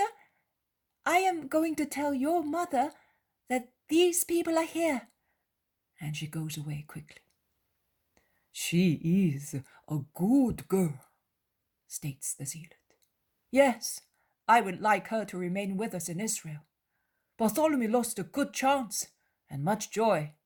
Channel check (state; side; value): identical; both; correlation 1.00